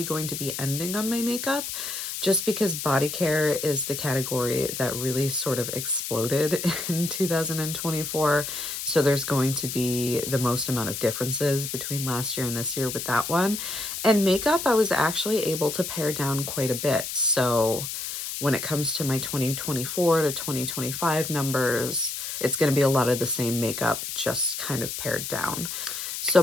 going to be ending on my makeup just because Bodycare is the category that really sort of exploded in 2024. So there's going to be the most amount of differences between last year and this year with that one. And makeup, I was actually able to pare down quite a bit. So when it comes to my 2024 to 2025 numbers, it's going to be a lot of the same makeup, just kind of pared down. So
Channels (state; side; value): noise; left; hiss, 5 dB below the sound